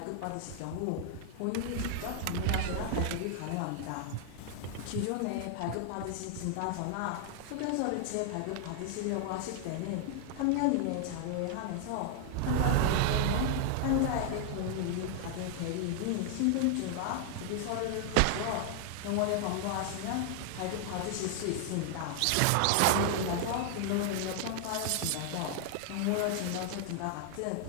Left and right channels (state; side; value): different; both; correlation 0.00